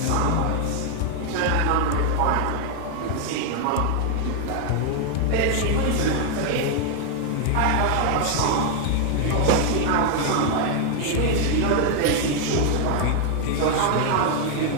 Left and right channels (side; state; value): both; different; correlation 0.00